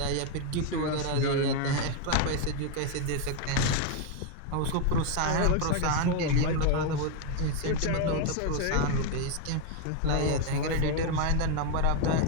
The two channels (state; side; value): different; both; correlation 0.01